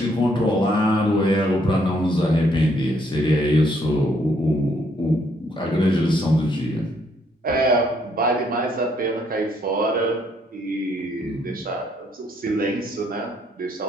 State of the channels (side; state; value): both; normal; correlation 0.70